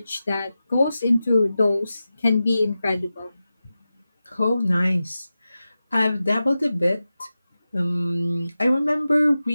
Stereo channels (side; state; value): both; inverted; correlation -0.94